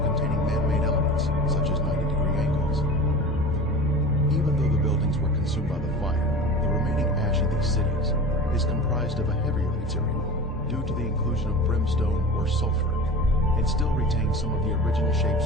man-made elements, such as 90-degree angles. Even though the buildings were consumed by the fire, the remaining ash in these cities is comprised of a heavier material due to the inclusion of brimstone or sulfur, and still retains some of the original shapes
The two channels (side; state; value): both; normal; correlation 0.34